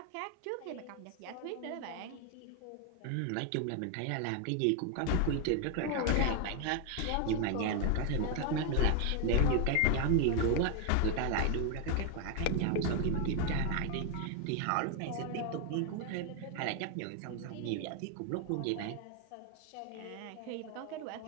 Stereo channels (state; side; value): different; both; correlation 0.01